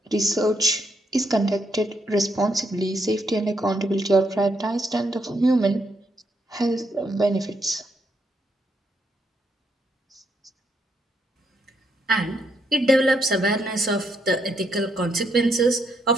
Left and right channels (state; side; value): normal; both; correlation 0.76